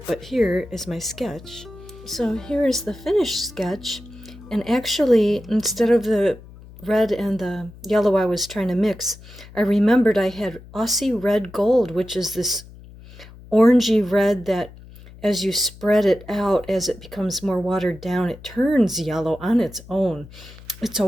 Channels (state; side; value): noise; left; hum, 19 dB below the sound